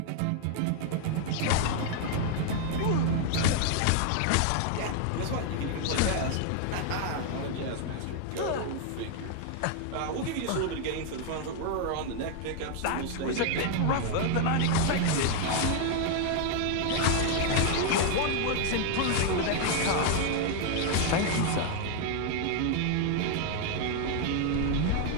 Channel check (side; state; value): both; different; correlation 0.00